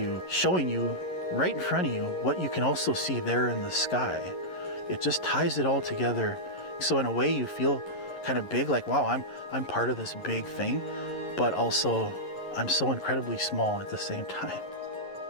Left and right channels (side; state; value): right; late; 11 ms